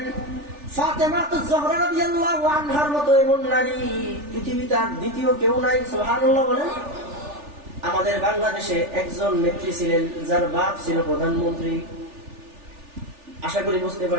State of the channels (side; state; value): left; late; 3.4 ms